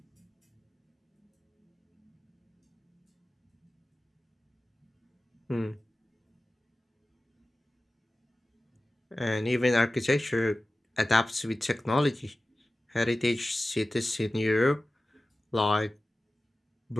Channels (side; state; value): both; normal; correlation 0.96